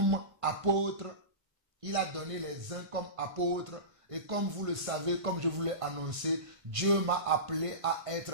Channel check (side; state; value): left; late; 1.5 ms